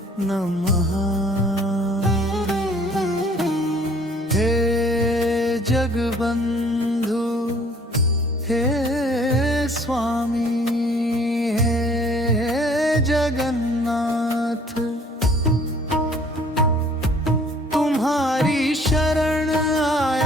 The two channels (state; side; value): normal; both; correlation 0.56